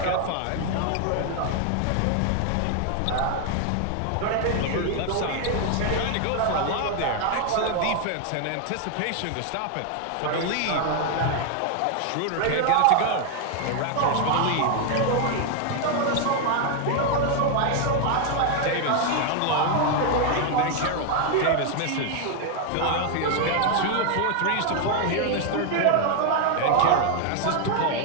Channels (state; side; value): different; both; correlation 0.00